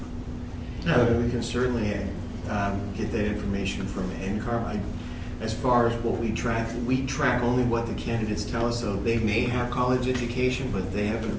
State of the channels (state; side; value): identical; both; correlation 1.00